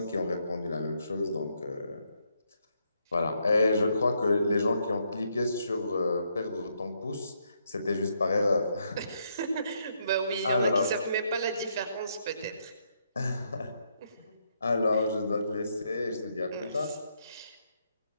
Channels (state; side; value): inverted; both; correlation -0.76